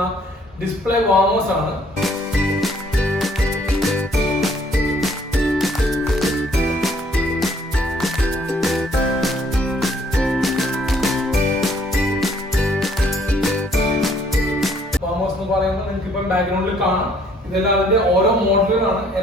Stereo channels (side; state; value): both; normal; correlation 0.63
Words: ഡിസ്പ്ലേ വാർമേഴ്സ് ആണ്. പറയുമ്പോൾ നിങ്ങൾക്ക് ഇപ്പം ബാക്ക്ഗ്രൗണ്ടിൽ കാണാം. ഇതെല്ലാം അതിന്റെ ഓരോ മോഡലുകളാണ്.